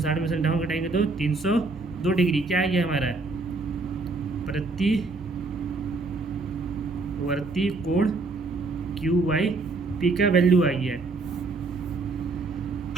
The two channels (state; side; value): quieter; left; 3.7 dB